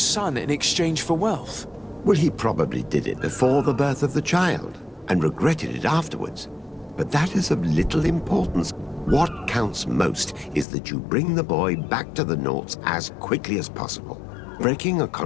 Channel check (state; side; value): drops out; right; at 10.7 s